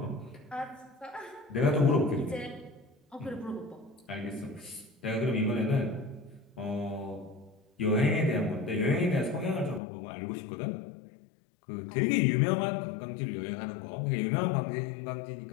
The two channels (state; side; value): drops out; right; at 9.8 s